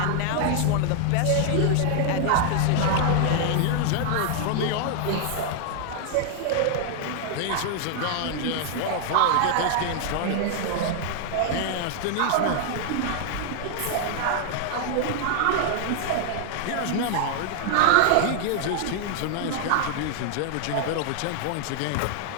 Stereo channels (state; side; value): different; both; correlation 0.00